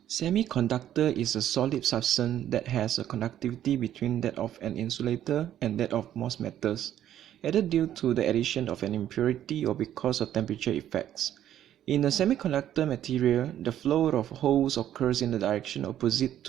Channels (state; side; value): quieter; left; 11.3 dB